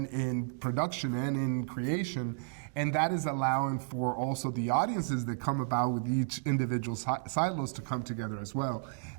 in production and in creation. And that is allowing for also the audiences that come about with each individual silos to come together as well.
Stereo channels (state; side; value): silent; left; digital silence